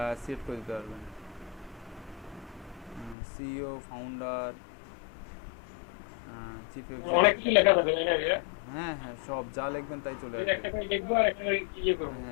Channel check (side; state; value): right; drops out; at 3.2 s